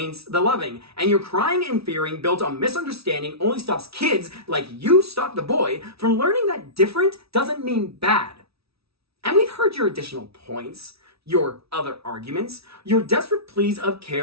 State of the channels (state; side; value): late; left; 0.77 ms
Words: the loving. And your crying and fearing built on misunderstanding only stops kids, like you stopped the boy, from learning that different doesn't mean bad. And we've heard your additional points, your other arguments, your desperate pleas of